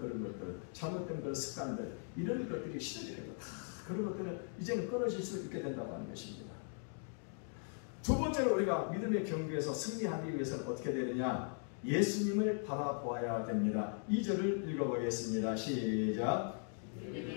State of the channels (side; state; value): right; silent; 52 dB below the other